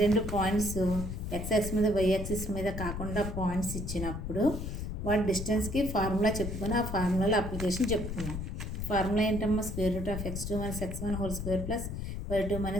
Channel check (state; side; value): noise; left; rumble, 5 dB below the sound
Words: పాయింట్స్ ఎక్స్ యాక్సిస్ మీద వై యాక్సిస్ మీద కాకుండా పాయింట్స్ ఇచ్చినప్పుడు వాటి డిస్టెన్స్కి ఫార్ములా చెప్పుకొని ఆ ఫార్ములాలో అప్లికేషన్ చెప్పుకున్నాం. ఫార్ములా ఏంటమ్మా, square root of x2 - x1 whole square plus y2 -